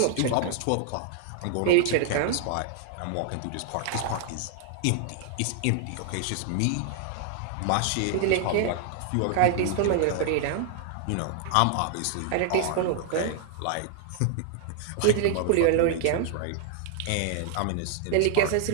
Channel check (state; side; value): different; both; correlation 0.00